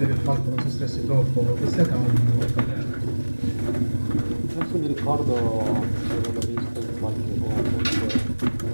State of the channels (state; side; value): inverted; both; correlation -1.00